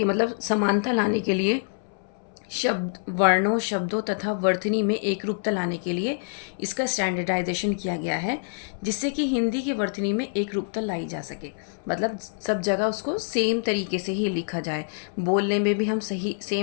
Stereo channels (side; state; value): right; silent; 61 dB below the other